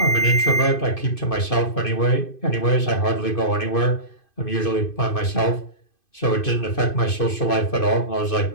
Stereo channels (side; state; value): right; late; 2.5 ms